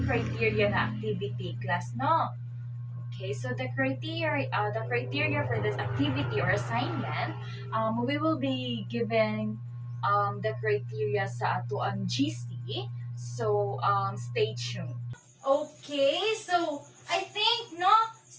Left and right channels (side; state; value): both; identical; correlation 1.00